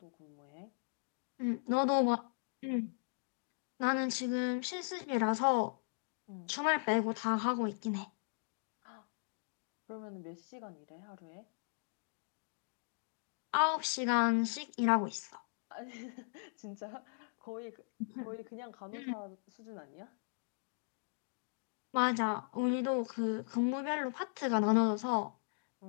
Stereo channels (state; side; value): silent; right; digital silence